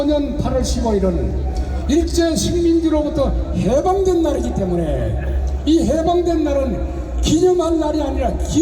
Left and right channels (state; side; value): identical; both; correlation 1.00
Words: 8월 15일은 일제 식민지로부터 해방된 날이기 때문에 이 해방된 날은 기념할 날이 아니라